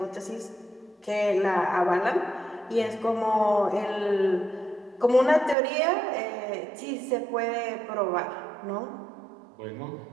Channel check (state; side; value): drops out; left; at 5.6 s